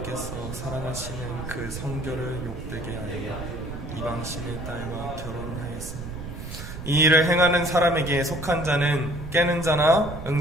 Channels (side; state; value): right; noise; rumble, 10 dB below the sound